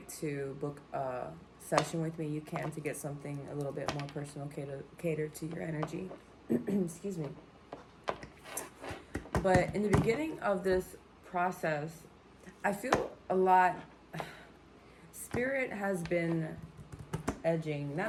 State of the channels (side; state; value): both; identical; correlation 1.00